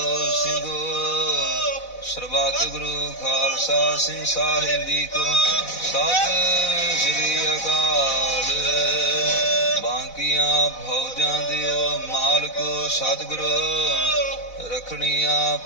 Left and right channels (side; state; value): right; late; 4.0 ms